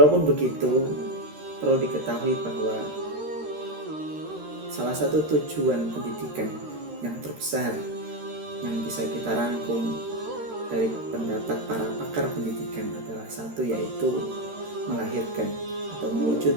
begitu, perlu diketahui bahwa salah satu tujuan pendidikan yang terbesar yang bisa kita rangkum dari pendapat para pakar pendidikan adalah satu, yaitu melahirkan atau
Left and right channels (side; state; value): left; late; 13 ms